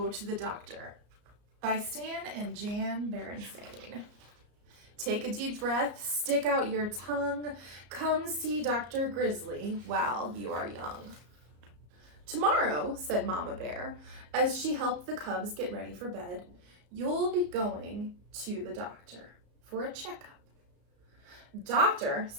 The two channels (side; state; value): left; late; 34 ms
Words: to the Doctor by Stan and Jan Berenstain. Take a deep breath, stick out your tongue, come see Dr. Grizzly while you are young. Tomorrow, said Mama Bear, as she helped the cubs get ready for bed, you'll be going to the doctor for a checkup. Doctor,